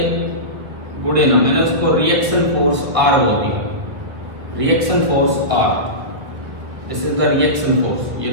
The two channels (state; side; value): late; left; 1.5 ms